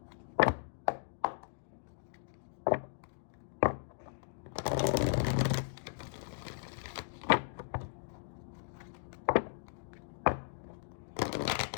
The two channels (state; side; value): silent; right; digital silence